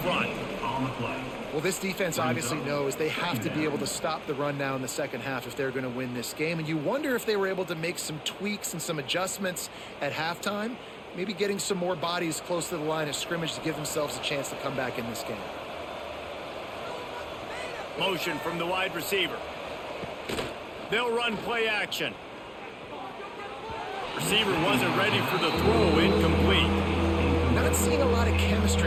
front. On the play. Well, this defense obviously knows they have to be able to stop the run now in the second half if they're going to win this game. And you wonder if they were able to make some tweaks and some adjustments at halftime, maybe getting some more bodies close to the line of scrimmage to give themselves a chance to come back in this game. Motion from the wide receiver. They'll run play action. Receiver wasn't ready for the throw, incomplete. Not seeing a lot of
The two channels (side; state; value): both; identical; correlation 1.00